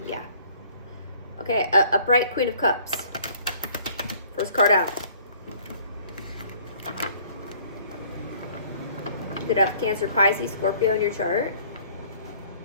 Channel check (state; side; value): inverted; both; correlation -0.56